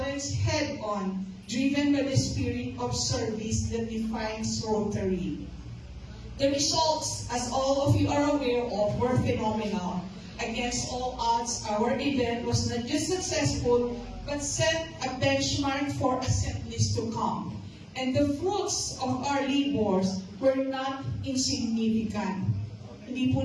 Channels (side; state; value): both; identical; correlation 1.00